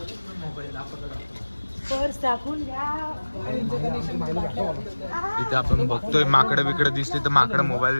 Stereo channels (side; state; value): both; inverted; correlation -1.00